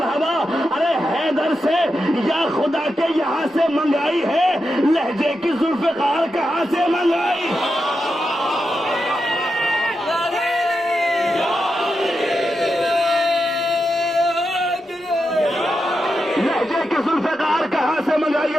ارے حیدر سے یا خدا کے یہاں سے منگائی ہے، لہجے کی ذوالفقار کہاں سے منگائی؟ لہجے کی ذوالفقار کہاں سے منگائی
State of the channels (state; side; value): normal; both; correlation 0.87